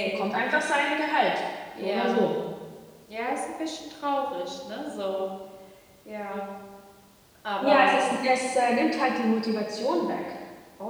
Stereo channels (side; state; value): both; identical; correlation 1.00